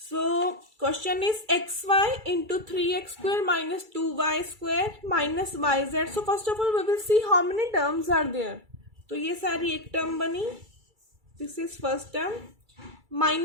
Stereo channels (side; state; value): left; late; 2.3 ms